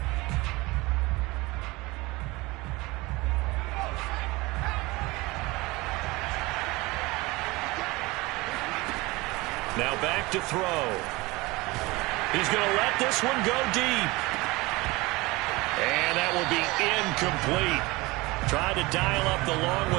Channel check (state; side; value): quieter; left; 22.4 dB